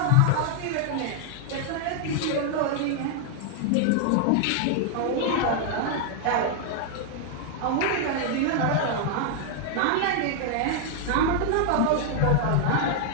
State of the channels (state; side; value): different; both; correlation 0.00